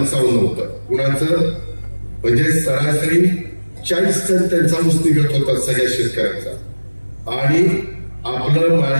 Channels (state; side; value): inverted; both; correlation -1.00